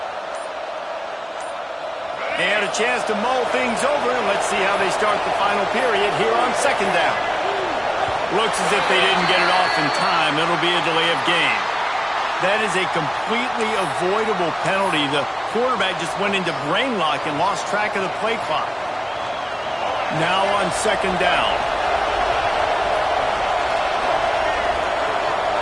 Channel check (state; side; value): identical; both; correlation 1.00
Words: And a chance to mull things over, and let's see how they start the final period here on second down. Looks as if they didn't get it off in time. It'll be a delay of game. That is a completely avoidable penalty. The quarterback just went into brain lock and lost track of the play clock. Now on second down.